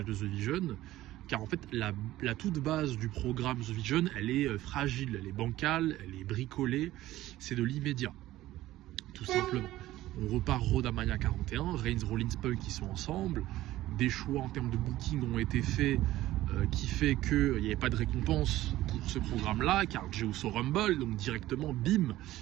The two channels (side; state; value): left; quieter; 15.5 dB